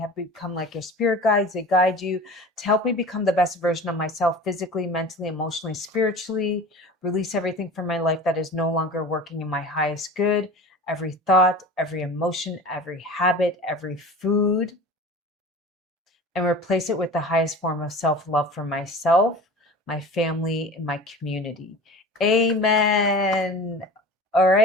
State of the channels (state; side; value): normal; both; correlation 0.37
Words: become like your spirit guides. They guide you to help me become the best version of myself, physically, mentally, emotionally, spiritually. Release everything from my life that is no longer working in my highest good. Every thought, every emotion, every habit, every food. And replace it with the highest form of self-love for myself, my family, and my community. Amen. All